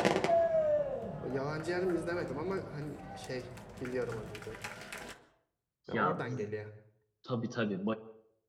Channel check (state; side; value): identical; both; correlation 1.00